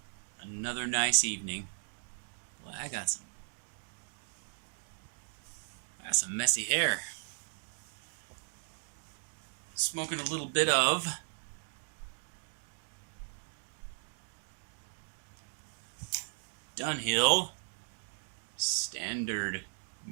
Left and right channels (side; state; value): left; silent; digital silence